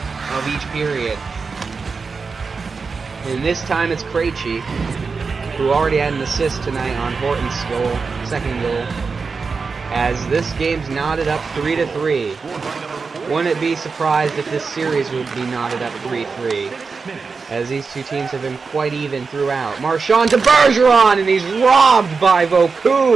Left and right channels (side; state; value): left; quieter; 4.8 dB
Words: of each period. And this time it's Krejci, who already had an assist tonight on Horton's goal, second goal, as this game's knotted up 3-3. Wouldn't be surprised if this series would be knotted up 3-3, as these two teams have been quite even throughout. Marchand to Bergeron, and he's robbed by